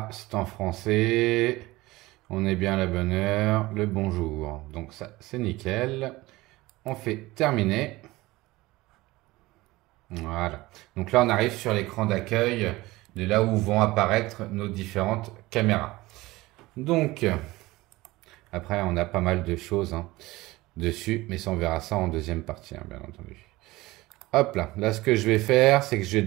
c'est en français. On est bien à la bonne heure. Le bonjour. Donc ça, c'est nickel. On fait terminer. Voilà. Donc là, on arrive sur l'écran d'accueil de là où vont apparaître nos différentes caméras. Donc, après, on a pas mal de choses dessus, mais ça, on verra ça en deuxième partie, bien entendu. Hop là. Là, ce que je vais faire, c'est que je vais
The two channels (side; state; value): left; quieter; 19.6 dB